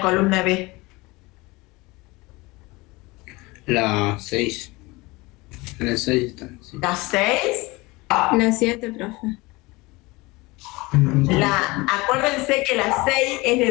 B? La 6. En el 6 está. Sí. ¿La 6? La 7, profe. Acuérdense que la 6 es de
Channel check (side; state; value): right; quieter; 23.1 dB